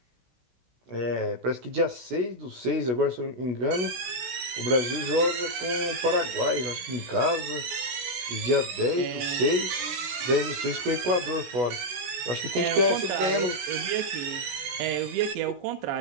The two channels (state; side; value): late; left; 16 ms